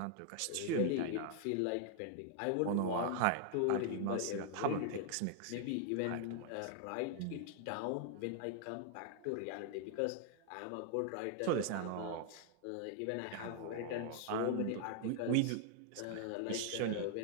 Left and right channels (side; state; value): both; different; correlation 0.00